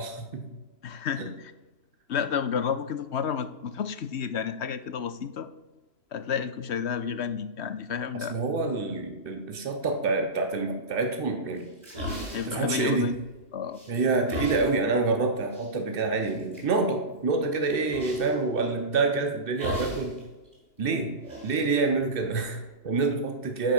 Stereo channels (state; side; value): late; right; 2.6 ms